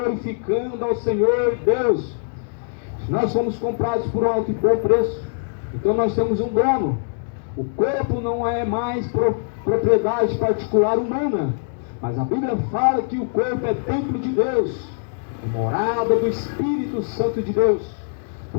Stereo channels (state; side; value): silent; right; digital silence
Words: ao Senhor Deus. Nós somos comprados por um alto e bom preço, então nós temos um dono. O corpo não é mais propriedade particular humana, mas a Bíblia fala que o corpo é templo de Deus, morada do Espírito Santo de Deus.